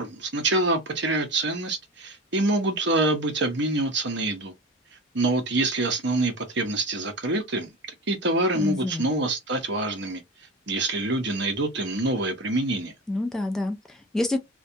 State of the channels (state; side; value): normal; both; correlation 0.30